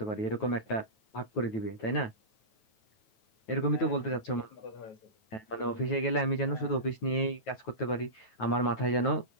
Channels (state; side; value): late; right; 9.2 ms